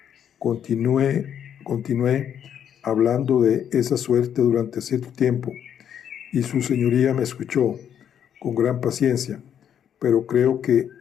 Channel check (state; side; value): quieter; right; 9.1 dB